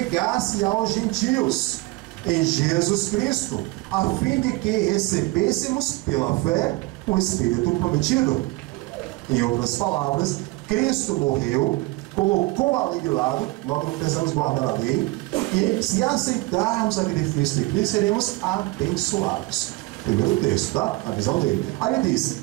aos gentios em Jesus Cristo, a fim de que recebêssemos pela fé o Espírito prometido. Em outras palavras, Cristo morreu, colocou a lei de lado, nós não precisamos guardar a lei, e se aceitarmos a sacrifício de Cristo, seremos abençoados. Primeiro texto, tá? A visão dele. Aí ele diz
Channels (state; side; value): quieter; left; 21.3 dB